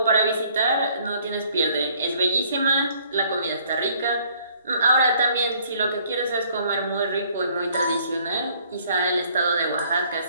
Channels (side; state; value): both; inverted; correlation -0.61